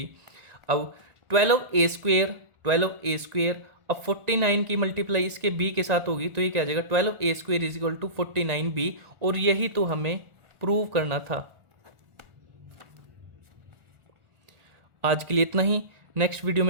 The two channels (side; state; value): left; late; 1.4 ms